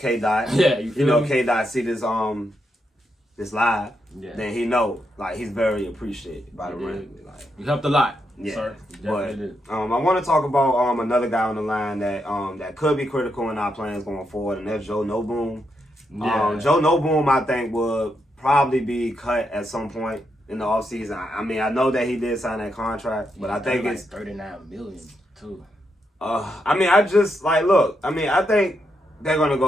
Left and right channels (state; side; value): normal; both; correlation 0.82